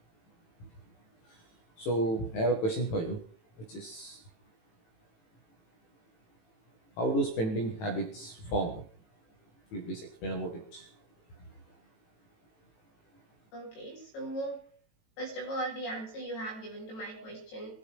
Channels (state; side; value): late; right; 18 ms